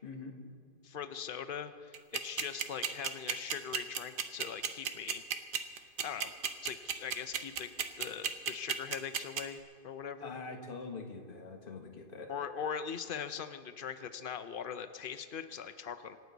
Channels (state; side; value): late; left; 2.5 ms